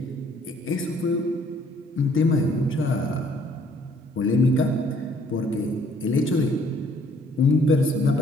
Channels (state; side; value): normal; both; correlation 0.62